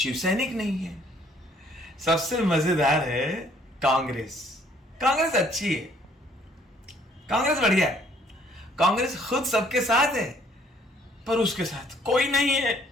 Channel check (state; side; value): normal; both; correlation 0.62